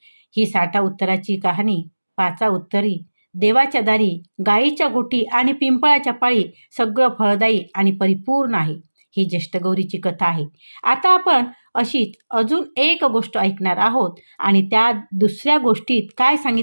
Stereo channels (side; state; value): both; inverted; correlation -1.00